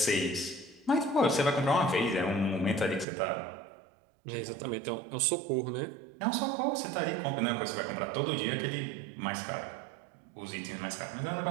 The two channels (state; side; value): drops out; left; at 3.1 s